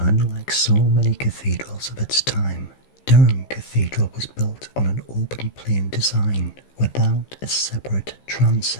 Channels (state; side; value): late; right; 15 ms